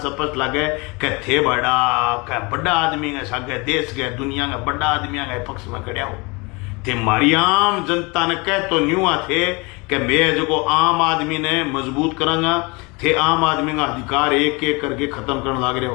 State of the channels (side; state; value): right; quieter; 27.8 dB